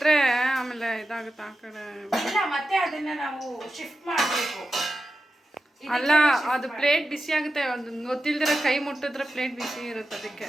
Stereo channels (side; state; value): both; normal; correlation 0.91